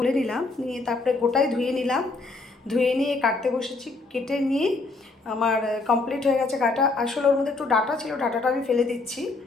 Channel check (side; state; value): right; quieter; 3.6 dB